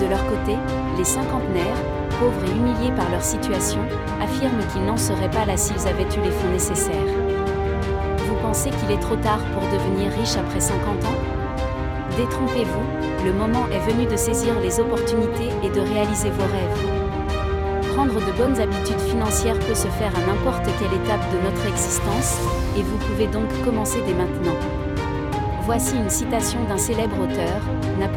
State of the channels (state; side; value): identical; both; correlation 1.00